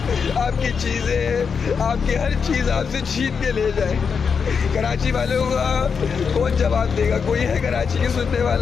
आपकी चीज़ें, आपकी हर चीज़ आपसे छीन के ले जाए। कराची वालों का कौन जवाब देगा? कोई है कराची के सुनने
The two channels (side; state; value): right; quieter; 6.0 dB